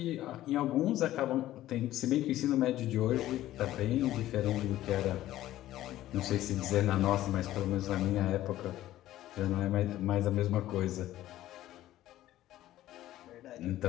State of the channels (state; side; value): quieter; right; 14.3 dB